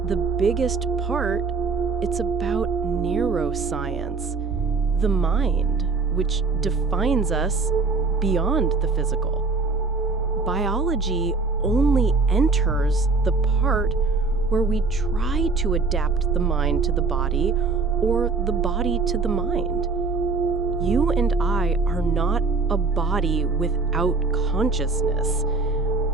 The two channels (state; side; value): quieter; left; 4.1 dB